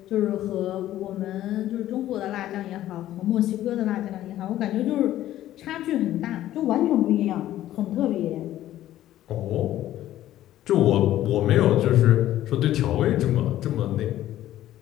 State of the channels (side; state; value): right; quieter; 13.4 dB